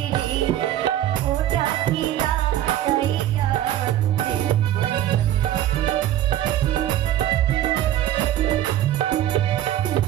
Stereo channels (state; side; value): quieter; left; 12.4 dB